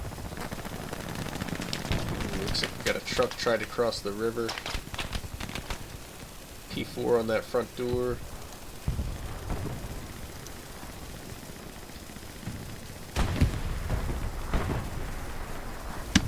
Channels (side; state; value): both; identical; correlation 1.00